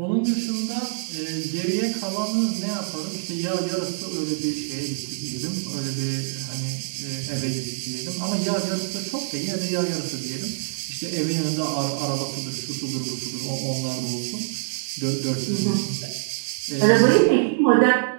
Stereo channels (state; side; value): silent; left; digital silence